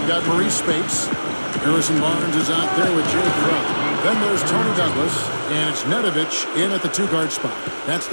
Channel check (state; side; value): inverted; both; correlation -1.00